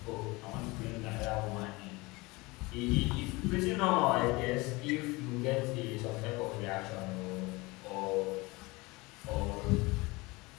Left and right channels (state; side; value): quieter; right; 23.6 dB